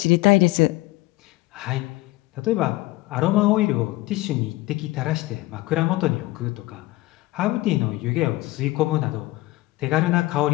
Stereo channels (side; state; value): right; quieter; 19.4 dB